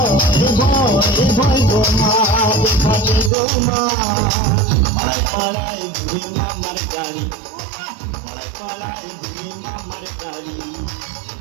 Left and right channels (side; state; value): left; drops out; at 3.3 s